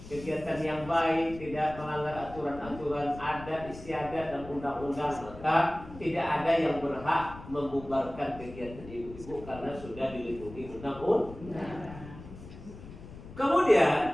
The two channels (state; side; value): noise; left; rumble, 15 dB below the sound